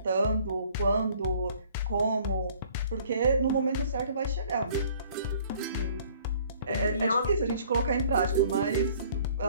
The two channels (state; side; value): inverted; both; correlation -0.56